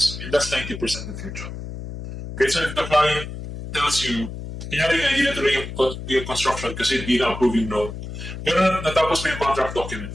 And that's 90% of your job. Okay, so if the client tells you, kunyari nga, hindi natuloy yung construction kasi hindi na approving loan, pero natapos mo yung contract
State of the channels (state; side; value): noise; left; hum, 9 dB below the sound